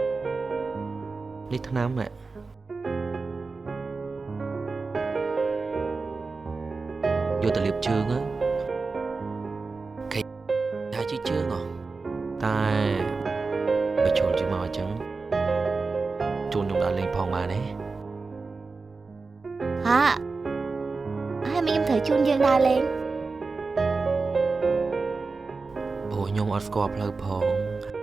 នេះថ្នាំណែយកទៅលាបជើងខេថាជិះជើងតែបើជូនជិះមកអញ្ចឹងជូនខ្ញុំដល់លេងផងបានទេហើយមីខ្ញុំត្រូវជូនយើងដើរលេងព្រោះខ្ញុំអត់ស្គាល់ផ្លូវផង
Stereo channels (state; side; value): quieter; left; 4.1 dB